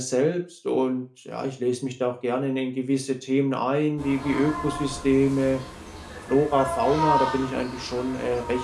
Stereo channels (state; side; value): identical; both; correlation 1.00